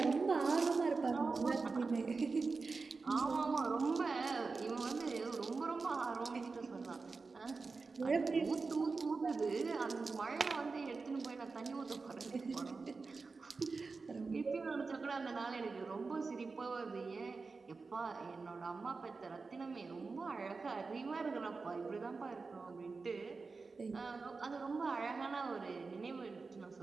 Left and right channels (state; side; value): quieter; left; 4.2 dB